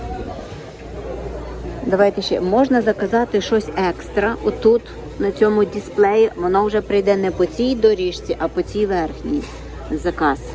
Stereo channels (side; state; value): both; identical; correlation 1.00